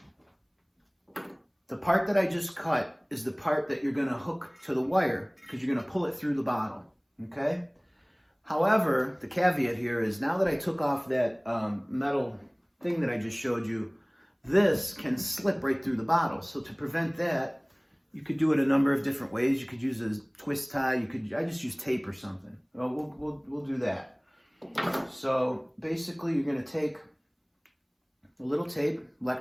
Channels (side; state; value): both; identical; correlation 1.00